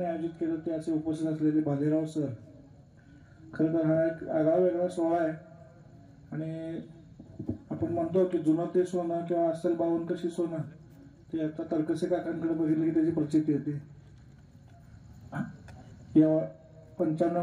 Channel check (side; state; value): both; identical; correlation 1.00